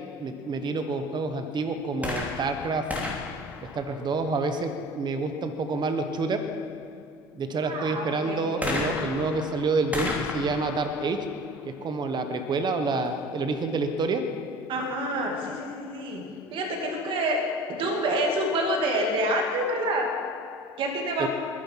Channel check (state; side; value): normal; both; correlation 0.41